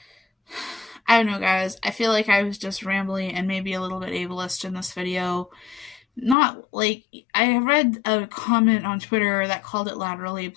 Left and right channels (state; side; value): drops out; right; at 6.4 s